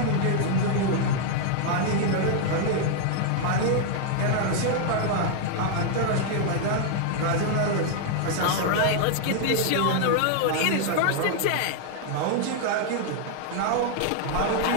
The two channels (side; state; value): both; different; correlation 0.00